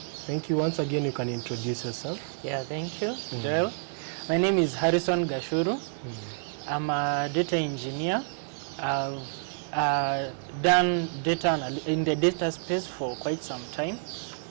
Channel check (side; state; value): left; silent; digital silence